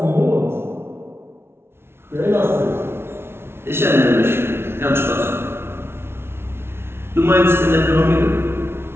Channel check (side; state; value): left; late; 0.12 ms